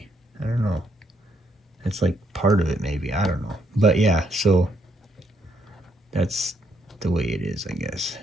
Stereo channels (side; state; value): both; normal; correlation 0.73